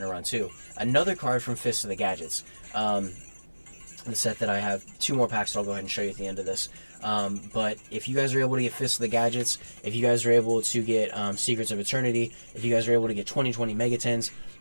to run too. Another card from Fist of the Gadgets. The set that I have 2 more packs that I'll go ahead and show you at the end of this. But if you guys are able to get Fist of the Gadgets, if you guys are able to get Secrets of Eternity, if you guys are able to get 2020 Mega 10s,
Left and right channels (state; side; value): inverted; both; correlation -1.00